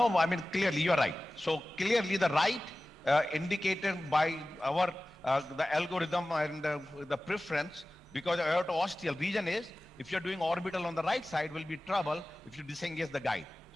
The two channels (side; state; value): both; normal; correlation 0.97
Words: I mean, clearly you're right. So clearly the right indicated by our, the algorithm and the preference, because aorto-ostial region is, if you're doing orbital on the right side, will be trouble if you disengage the guide.